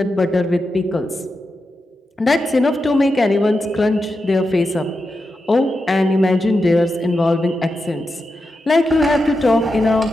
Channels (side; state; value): both; normal; correlation 0.88